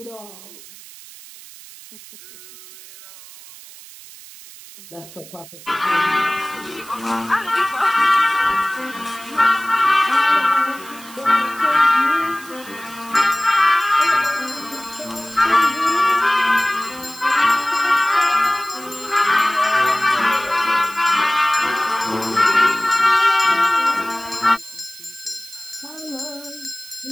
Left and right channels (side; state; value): right; noise; hiss, 18 dB below the sound